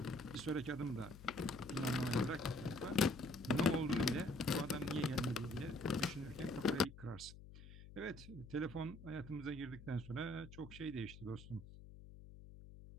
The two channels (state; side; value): noise; left; hum, 16 dB below the sound